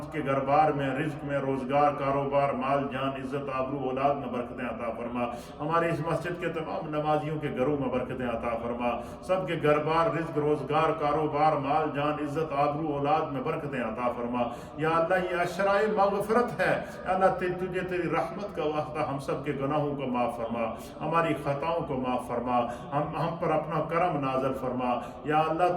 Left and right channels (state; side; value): identical; both; correlation 1.00